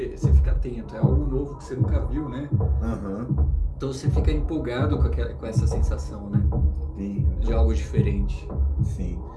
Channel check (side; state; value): both; identical; correlation 1.00